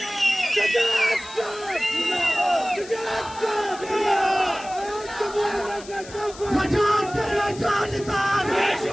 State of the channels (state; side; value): noise; left; hiss, 17 dB below the sound